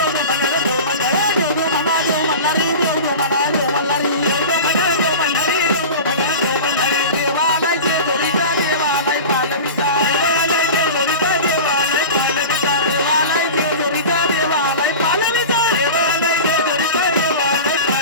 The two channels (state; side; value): inverted; both; correlation -0.31